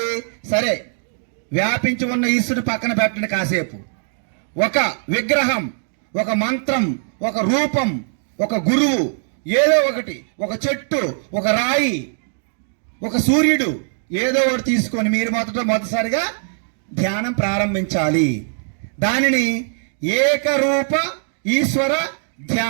సరే, వ్యాపించి ఉన్న ఈశ్వరుడు పక్కన పెట్టండి కాసేపు. ఒక విగ్రహం, ఒక మంత్రం, ఒక రూపం, ఒక గురువు, ఏదో ఒకటి, ఒక చెట్టు, ఒక రాయి, ఒక సూర్యుడు, ఏదో ఒకటి తీసుకొని మీరు మొదటిసారిగా ధ్యానం ప్రారంభించాలి. దానిని ఏకరూప ఈశ్వర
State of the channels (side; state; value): left; silent; digital silence